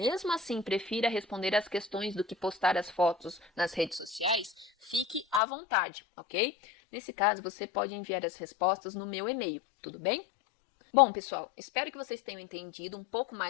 assim prefira responder às questões do que postar as fotos nas redes sociais, fique à vontade, ok? Nesse caso, você pode enviar as respostas no meu e-mail, tudo bem? Bom, pessoal, espero que vocês tenham entendido um pouco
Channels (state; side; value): drops out; right; at 5.4 s